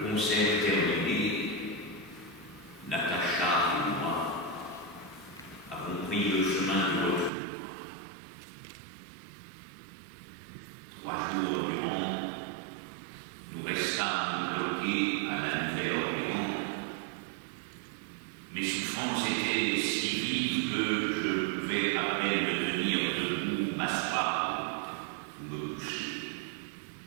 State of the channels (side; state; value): left; drops out; at 7.3 s